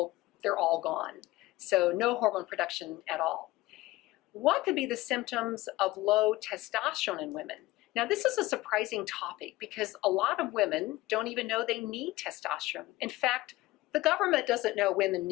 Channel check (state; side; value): quieter; right; 18.6 dB